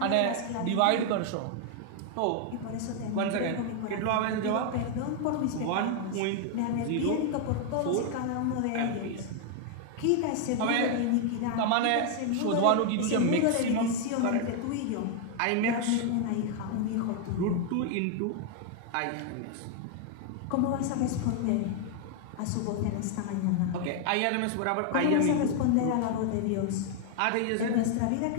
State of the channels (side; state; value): both; different; correlation 0.00